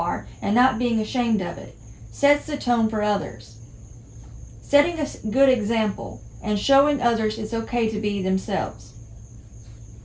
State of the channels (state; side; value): identical; both; correlation 1.00